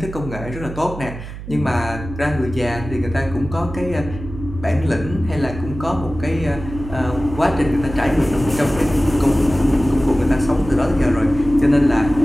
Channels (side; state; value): right; noise; hum, 11 dB below the sound